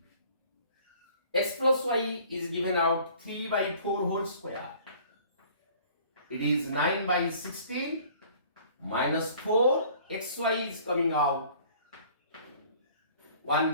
X plus y is given out 3 by 4 whole square. It is 9 by 16 minus 4. Xy is coming out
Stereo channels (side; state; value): both; inverted; correlation -0.52